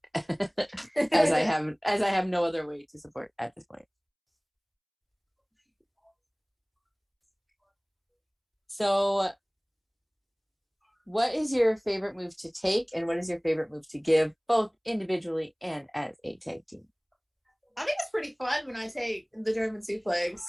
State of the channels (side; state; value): both; identical; correlation 1.00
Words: as I have no other way to support at this point. So What is your favorite move to take, and what is your favorite move to give, both individually and as a tag team? I think it's pretty fun when I take the German suplex.